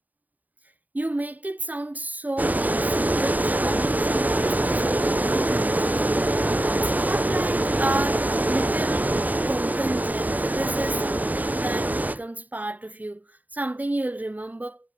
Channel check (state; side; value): late; left; 0.080 ms